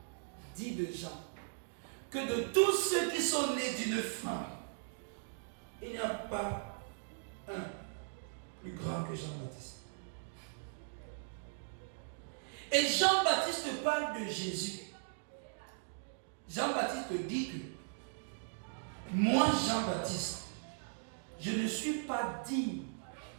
dit de Jean, que de tous ceux qui sont nés d'une femme, il n'y a pas un plus grand que Jean-Baptiste. Et Jean-Baptiste parle de Jésus. Jean-Baptiste dit que moi, Jean-Baptiste, je ne suis pas digne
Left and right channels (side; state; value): left; silent; digital silence